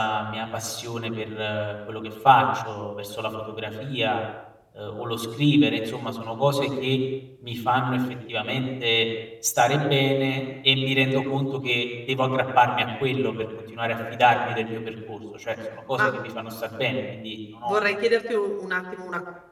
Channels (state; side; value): identical; both; correlation 1.00